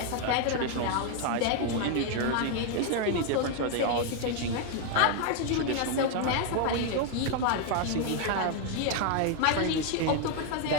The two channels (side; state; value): both; different; correlation 0.01